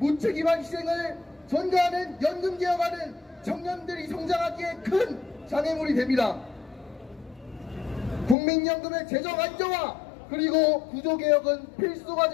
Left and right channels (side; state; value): right; drops out; at 8.3 s